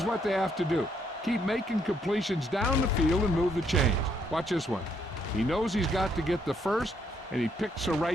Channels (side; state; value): both; normal; correlation 0.72